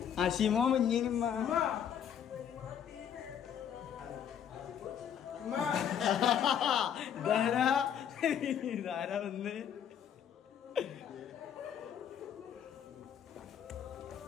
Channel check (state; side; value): quieter; right; 8.8 dB